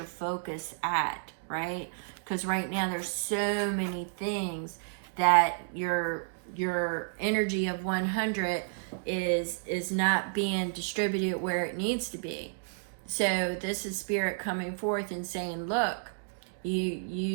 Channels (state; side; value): silent; left; digital silence